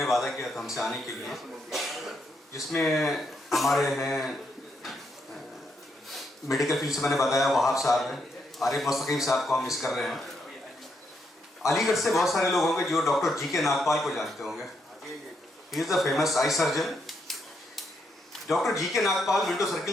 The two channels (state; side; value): normal; both; correlation 0.78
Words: वादा किया था हमसे आने के लिए, जिसमें हमारे हैं मेडिकल फील्ड से मैंने बताया वहाब साहब हैं, आरिफ मुस्तकीम साहब को हम मिस कर रहे हैं। अलीगढ़ से बहुत सारे लोग होंगे जो डॉक्टर जी के नागपाल को जानते होंगे। He is the famous eye surgeon. Doctor G K Nagpal Minto